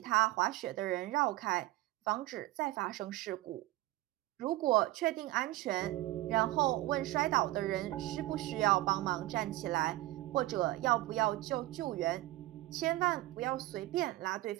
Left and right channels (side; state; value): left; quieter; 17.8 dB